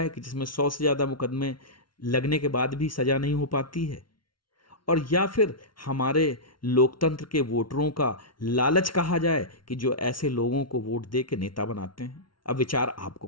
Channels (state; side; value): late; right; 0.73 ms